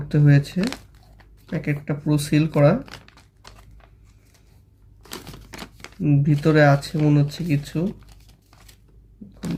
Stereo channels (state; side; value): identical; both; correlation 1.00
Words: হয়েছে। প্যাকেটটা পুরো সিল করা, ভিতরে আছে মনে হচ্ছে কিছু।